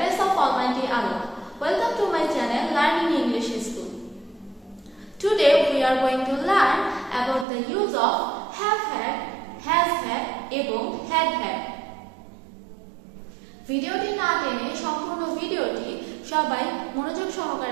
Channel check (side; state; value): left; drops out; at 7.5 s